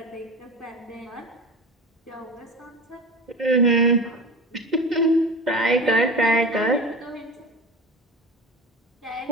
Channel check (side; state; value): both; normal; correlation 0.30